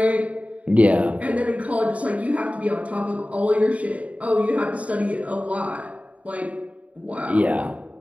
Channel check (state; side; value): late; left; 0.067 ms